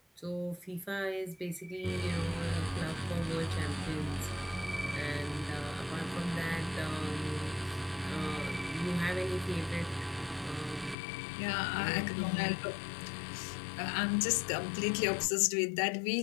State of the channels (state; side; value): drops out; right; at 11.0 s